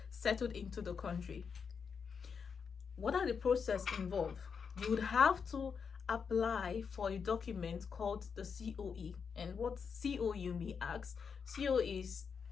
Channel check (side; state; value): right; quieter; 6.2 dB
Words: settled into the country. What are the process involved? You would have to apply for a document called the COE. And what COE, you may ask? COE